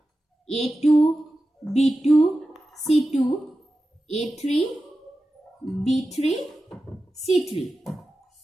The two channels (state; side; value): normal; both; correlation 0.93